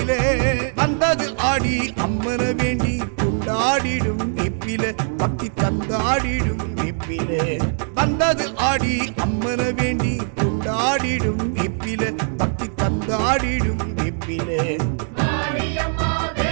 வந்தது ஆடி அம்மன வேண்டி கொண்டாடிடும் வெப்பில பக்தி தந்தாடிடும் வெப்பில வந்தது ஆடி அம்மன வேண்டி கொண்டாடிடும் வெப்பில பக்தி தந்தாடிடும் வெப்பில மாரியம்மா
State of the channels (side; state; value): left; silent; 65 dB below the other